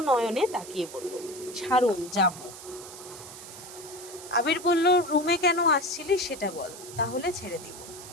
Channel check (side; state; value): right; noise; hiss, 14 dB below the sound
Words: নয়নে তাকিয়ে বলল, ছাড়ুন, যাব। আবির বলল, রুমে কেন আসছিলি সেটা বল, তাহলে ছেড়ে দিব।